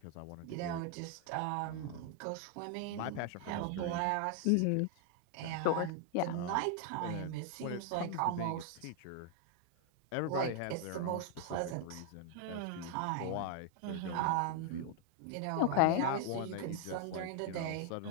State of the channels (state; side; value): different; both; correlation 0.00